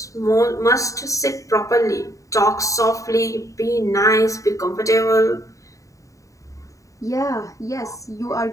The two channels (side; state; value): right; late; 0.16 ms